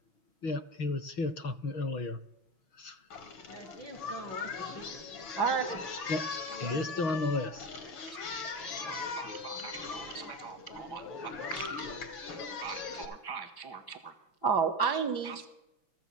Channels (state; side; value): late; right; 6.0 ms